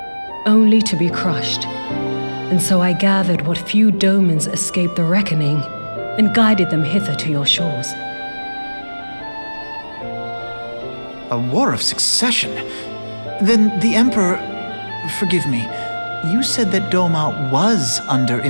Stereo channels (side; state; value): both; inverted; correlation -1.00